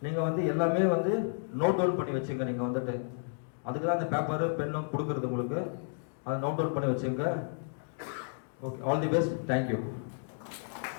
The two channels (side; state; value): right; silent; digital silence